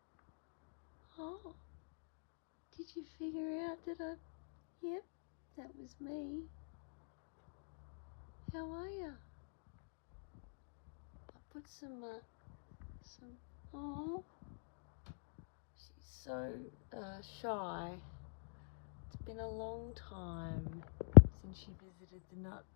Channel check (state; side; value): silent; right; digital silence